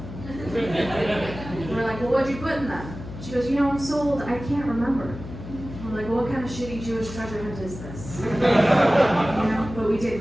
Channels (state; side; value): noise; left; hum, 12 dB below the sound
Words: We're like, well, what'd you put in them? She goes, you know, I'm so old, I can't remember. We're like, well, what kind of shitty Jewish treasure hunt is this? You know, but we